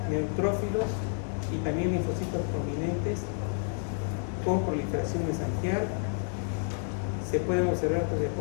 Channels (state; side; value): silent; right; 58 dB below the other